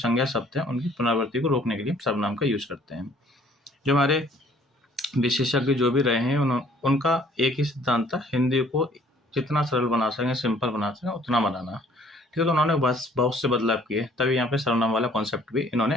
शब्द हैं उनकी पुनरावृत्ति को रोकने के लिए सर्वनाम का यूज करते हैं। जो हमारे विशेषज्ञ जो भी रहे हैं उनका एक ही सिद्धांत था, हिंदी को जितना सरल बना सकें, सिंपल बना सकें, उतना बनाना, ठीक है। तो उन्होंने बस बहुत से बदलाव किए, तभी यहाँ पे सर्वनाम वाला कॉन्सेप्ट भी इन्होंने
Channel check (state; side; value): normal; both; correlation 0.58